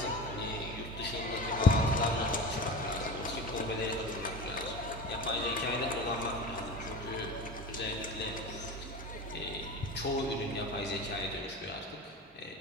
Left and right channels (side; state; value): both; normal; correlation 0.31